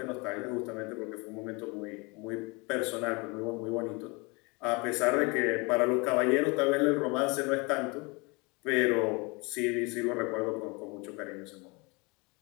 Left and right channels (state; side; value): quieter; right; 28.3 dB